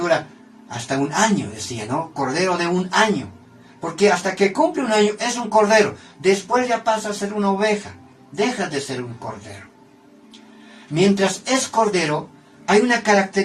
hasta un año, decía, ¿no? Cordero de un año. Porque hasta que cumple un año es un cordero. Después ya pasa a ser una oveja. Deja de ser un cordero. Mientras es cordero, hay una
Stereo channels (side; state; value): both; identical; correlation 1.00